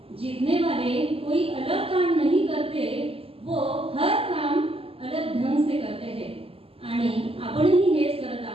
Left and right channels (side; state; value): left; late; 0.28 ms